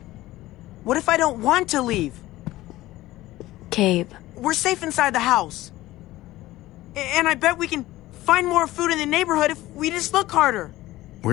What if I don't want to leave? Gabe. We're safe inside the house. And I bet we can find more food in the neighborhood if we just look harder. We're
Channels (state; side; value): quieter; right; 16.9 dB